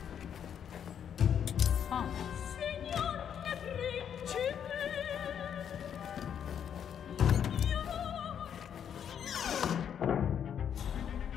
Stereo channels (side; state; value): right; quieter; 8.6 dB